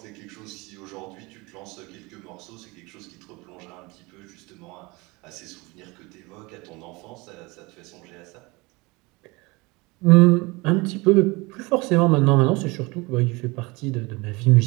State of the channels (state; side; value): quieter; left; 24.8 dB